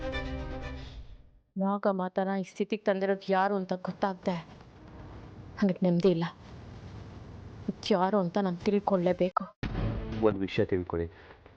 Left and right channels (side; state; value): both; identical; correlation 1.00